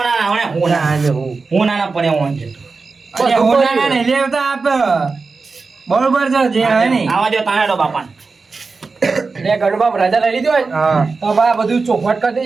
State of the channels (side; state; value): left; quieter; 4.3 dB